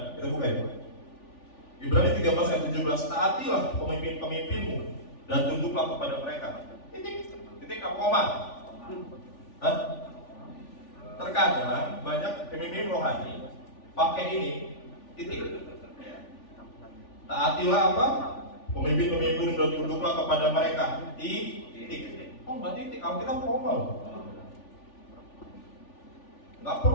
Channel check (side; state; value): right; late; 3.4 ms